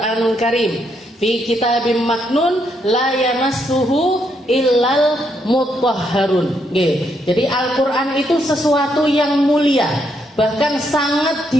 karim fi kitabim maknun la yamassuhu illal mutahharun. Jadi Al-Quran itu sesuatu yang mulia, bahkan sangat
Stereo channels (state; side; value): normal; both; correlation 0.76